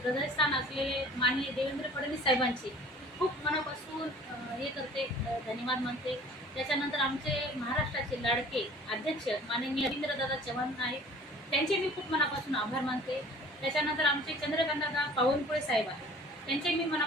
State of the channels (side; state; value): both; normal; correlation 0.48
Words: हृदयस्थान असलेले माननीय देवेंद्र फडणवीस साहेबांची खूप मनापासून हे करते, धन्यवाद मानते. त्याच्यानंतर आमचे महाराष्ट्राचे लाडके अध्यक्ष माननीय रवींद्रदादा चव्हाण आहेत, त्यांचे मी खूप मनापासून आभार मानते. त्याच्यानंतर आमचे चंद्रकांतदादा पावनकुळे साहेब आहेत, त्यांचे मी